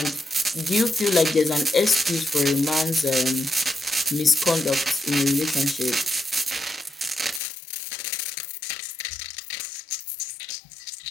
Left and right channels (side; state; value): right; drops out; at 7.4 s